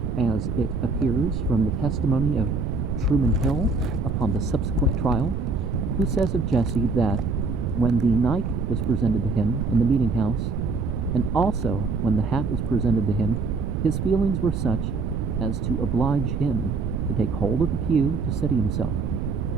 as it appears from the testimony of Truman Hill upon the subsequent trial, who says of Jesse that when the knife was presented to him in the meeting house, and also when the hat was presented to him, his feelings were such as to oblige him to take hold of the pew to steady himself.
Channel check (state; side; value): noise; right; rumble, 1 dB below the sound